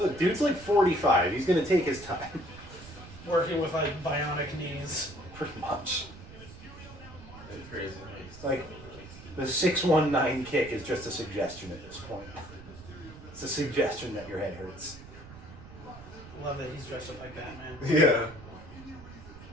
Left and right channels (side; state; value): right; noise; rumble, 17 dB below the sound